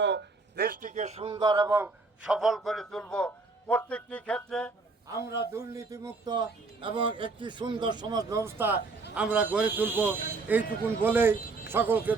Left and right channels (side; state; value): left; quieter; 3.8 dB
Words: দেশটিকে সুন্দর এবং সফল করে তুলব। প্রত্যেকটি ক্ষেত্রে আমরা দুর্নীতিমুক্ত এবং একটি সুন্দর সমাজ ব্যবস্থা আমরা গড়ে তুলব। এইটুকুন বলেই সকলকে